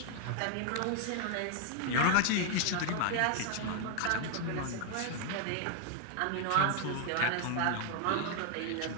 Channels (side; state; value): both; different; correlation 0.00